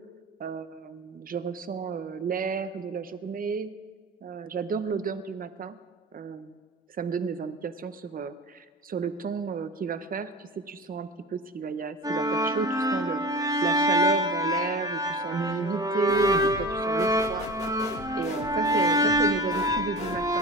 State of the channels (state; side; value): normal; both; correlation 0.34